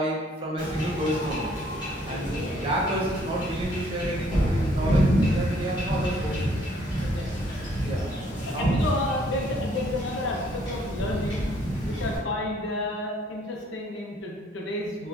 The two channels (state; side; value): normal; both; correlation 0.63